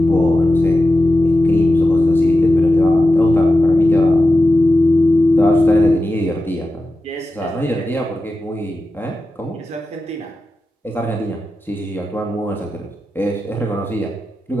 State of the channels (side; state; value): both; normal; correlation 0.92